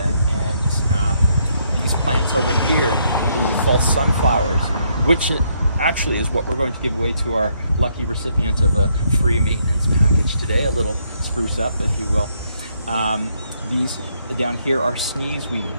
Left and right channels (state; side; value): inverted; both; correlation -0.73